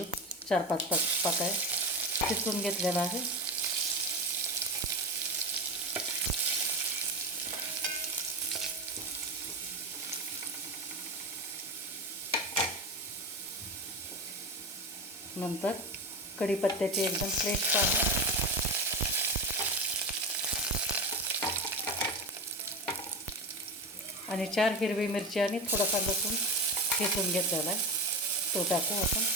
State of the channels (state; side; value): normal; both; correlation 0.22